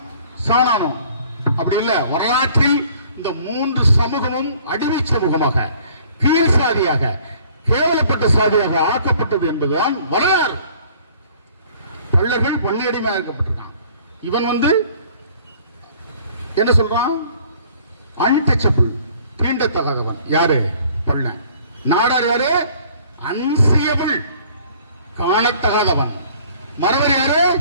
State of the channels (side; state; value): both; inverted; correlation -0.55